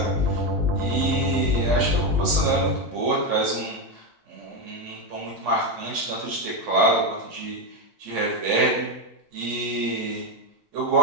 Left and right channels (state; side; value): normal; both; correlation 0.10